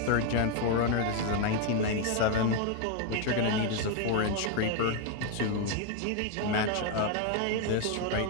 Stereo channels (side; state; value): both; different; correlation 0.01